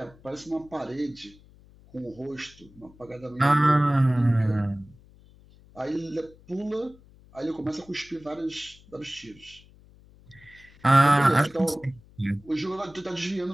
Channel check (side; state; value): left; noise; hum, 25 dB below the sound